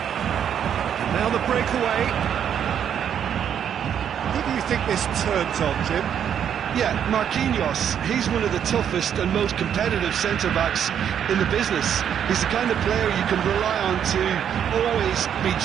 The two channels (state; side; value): quieter; left; 8.8 dB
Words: And now the breakaway. Who do you think this turns on, Jim? Yeah, Marquinhos, he's one of the toughest and most competitive centre-backs in the business. He's the kind of player you can rely on to always be